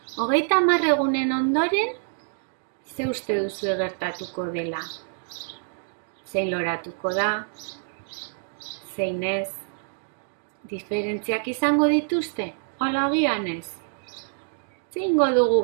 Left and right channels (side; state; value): left; silent; digital silence